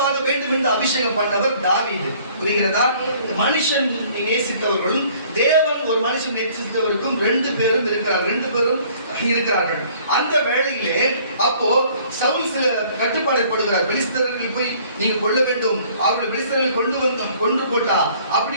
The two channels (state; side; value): inverted; both; correlation -0.56